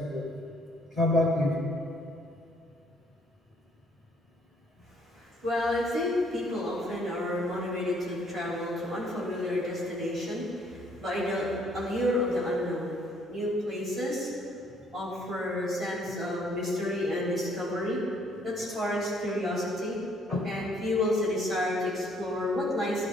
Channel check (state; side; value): normal; both; correlation 0.64